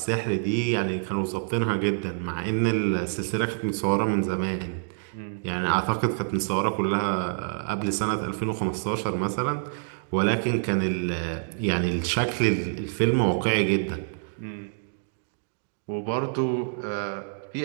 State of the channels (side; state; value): left; silent; digital silence